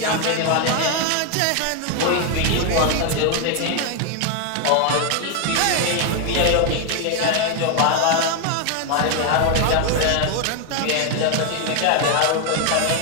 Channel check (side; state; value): both; different; correlation 0.01